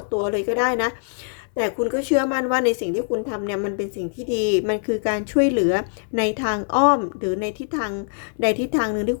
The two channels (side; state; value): right; silent; 58 dB below the other